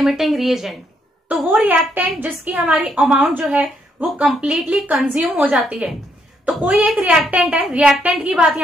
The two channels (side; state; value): both; normal; correlation 0.74